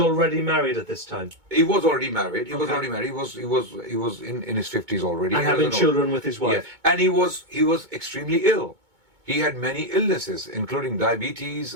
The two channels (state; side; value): late; left; 2.2 ms